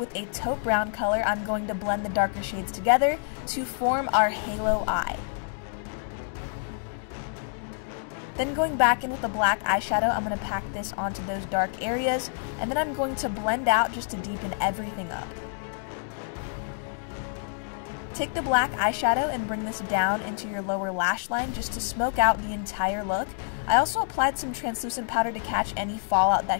a taupe brown color, I'm going to blend the darker shades together to form our halo eye. Then going back in with a black eyeshadow, I'm going to pack this onto those dark areas, and then I'm going to blend out just to deepen everything up. Take the black eyeshadow and bring this down into your lower lash line just to smoke out the entire look. I also applied some translucent powder to catch any fallout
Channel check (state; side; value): silent; right; digital silence